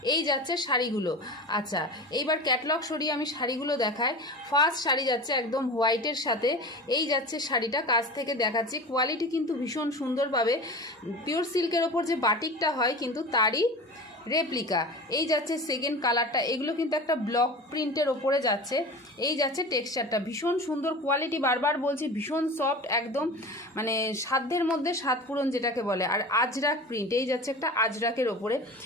এই যাচ্ছে শাড়িগুলো। আচ্ছা, এইবার ক্যাটলগ সরিয়ে আমি শাড়িগুলো দেখাই। ফার্স্ট শাড়ি যাচ্ছে একদম হোয়াইটের সাথে। এই যাচ্ছে শাড়িটা, কাছ থেকে দেখাচ্ছি। কোয়ালিটি কিন্তু ভীষণ সুন্দরভাবে পিওর সিল্কের ওপর যে বাটিকটা হয় কিন্তু তারই রেপ্লিকা। এই যাচ্ছে সেকেন্ড কালারটা। এগুলো কিন্তু একটা ব্লক প্রিন্টের ওপরে যাচ্ছে। এই যাচ্ছে টেক্সচারটা, ভীষণ সুন্দর কোয়ালিটি। বারবার বলছি, ভীষণ সফট, একদম মানে সাধ্যের মধ্যে স্বাদ পূরণ যেটাকে বলে। আর আজরাক প্রিন্ট, এই যাচ্ছে একটা আজরাকের ওপরে।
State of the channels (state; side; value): normal; both; correlation 0.33